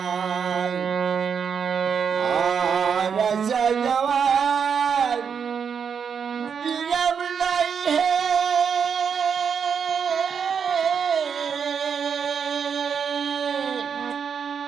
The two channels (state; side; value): quieter; left; 6.8 dB